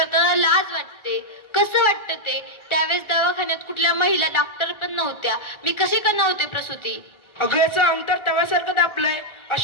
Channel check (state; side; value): late; right; 1.4 ms